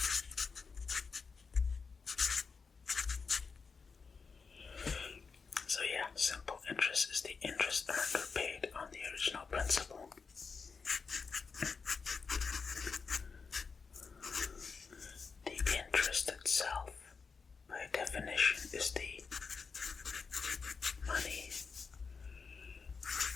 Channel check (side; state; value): right; quieter; 5.1 dB